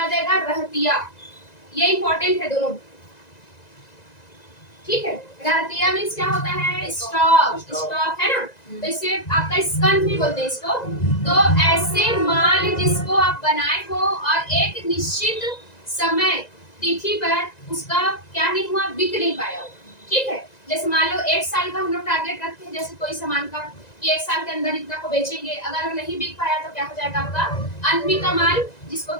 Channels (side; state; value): right; late; 1.9 ms